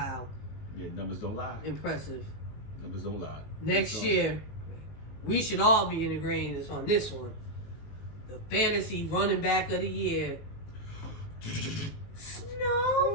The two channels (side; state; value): right; late; 19 ms